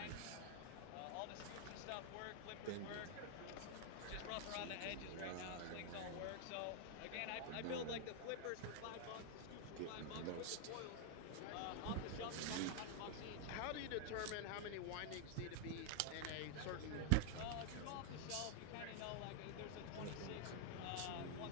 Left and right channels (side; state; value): both; different; correlation 0.00